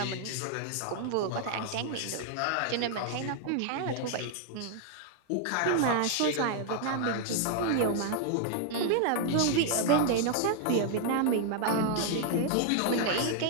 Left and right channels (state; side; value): different; both; correlation 0.00